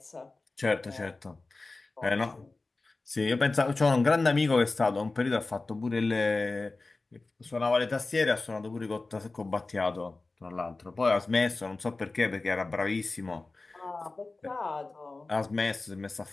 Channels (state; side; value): quieter; right; 3.4 dB